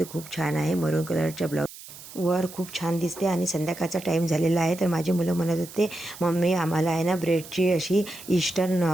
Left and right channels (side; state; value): right; noise; hiss, 16 dB below the sound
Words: खूप छान आहे. मरून कलरच्या ब्लाऊज वर खूप छान दिसते. आणि संध्याकाळचा टाईम झालेला आहे, तर माझी मुलं म्हणत होते, मम्मी आम्हाला आहे ना ब्रेडची अशी ईस्टर्न